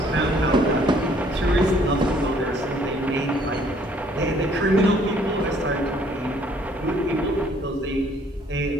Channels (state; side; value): normal; both; correlation 0.61